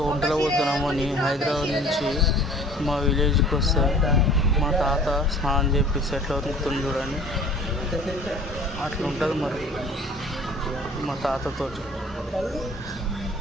వంటలు పోతున్నామని హైదరాబాద్ నుంచి మా విలేజ్కి వస్తే మా తాత స్నానం చేపిస్తే ఎట్లా ఉతుకుతుంది చూడండి. అట్లా ఉంటుంది మరి మా తాతతో.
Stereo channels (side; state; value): both; normal; correlation 0.48